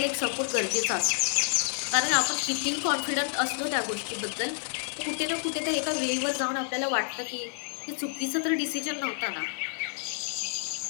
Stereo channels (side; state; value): right; silent; digital silence